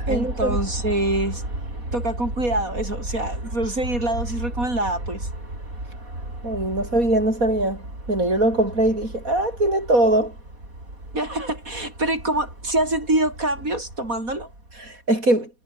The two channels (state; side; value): late; left; 4.2 ms